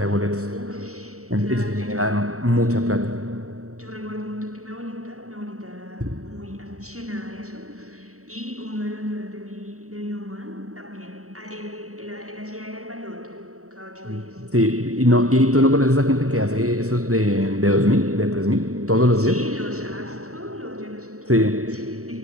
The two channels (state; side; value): late; left; 0.64 ms